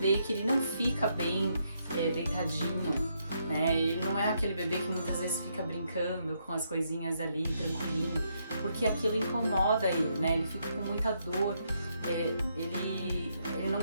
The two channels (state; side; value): inverted; both; correlation -0.77